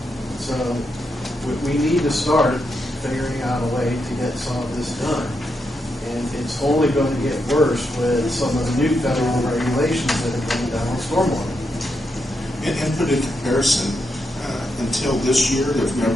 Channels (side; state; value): both; normal; correlation 0.83